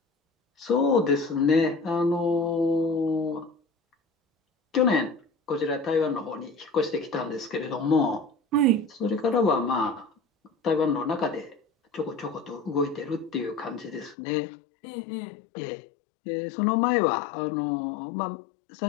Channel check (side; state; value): right; drops out; at 14.2 s